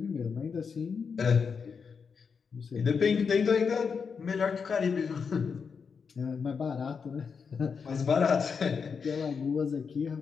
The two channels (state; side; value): quieter; right; 5.8 dB